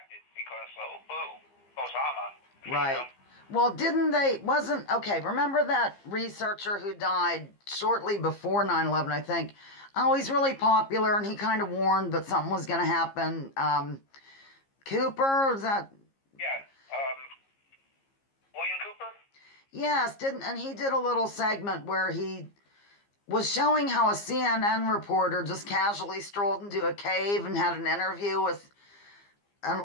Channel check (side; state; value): right; late; 15 ms